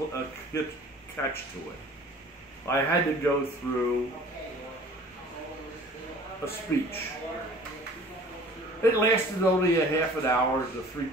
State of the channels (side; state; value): both; normal; correlation 0.48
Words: catch to it. I had to go through a speech. It lasted only a half an hour to